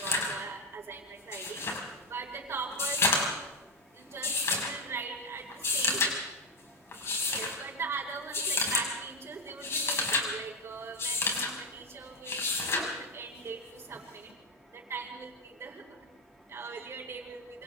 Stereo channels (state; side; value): normal; both; correlation 0.10